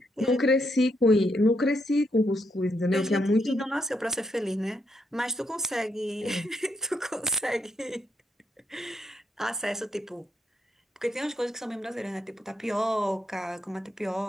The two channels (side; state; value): both; normal; correlation 0.78